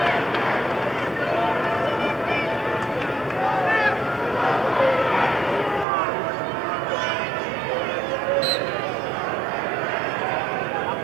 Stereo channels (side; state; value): left; drops out; at 5.9 s